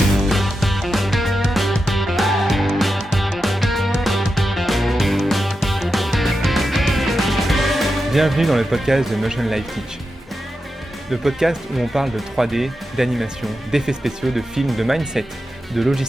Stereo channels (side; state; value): both; normal; correlation 0.89